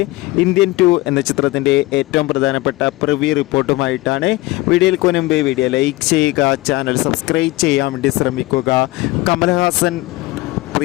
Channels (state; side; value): quieter; right; 20.4 dB